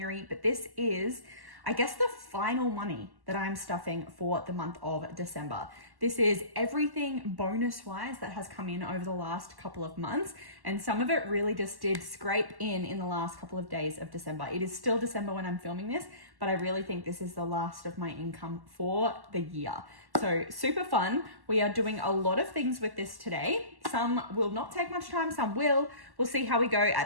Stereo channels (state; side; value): late; left; 1.1 ms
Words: but this is, I guess, the final money that I'm stuffing for the month of December. This is everything bonus-wise that has come in over the last couple of months, and some of it really just did scrape in the last couple of days of December. It is still December when I'm filming this, but I really think this is the last of my income for the year. So super fun. We are doing a lot of things with this today. Some will not take much time, some will. We'll see how we go